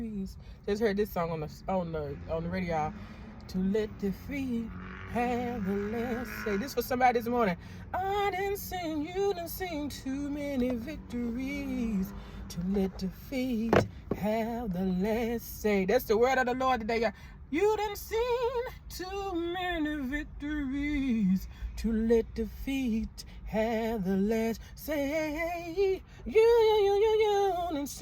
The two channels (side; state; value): both; identical; correlation 1.00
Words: Just heard this song on the radio. To let defeat have the last say. This for somebody this morning. I didn't sing, you didn't sing too many victories. To let defeat have the last say. That's the word of the Lord today, y'all. You didn't sing too many victories. To let defeat have the last say. You didn't